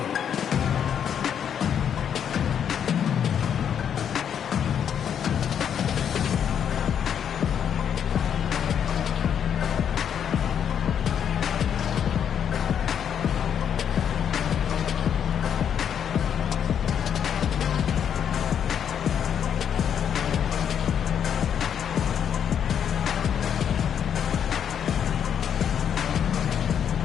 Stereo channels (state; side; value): quieter; right; 8.5 dB